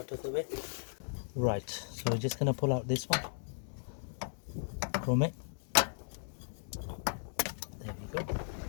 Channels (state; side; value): silent; right; digital silence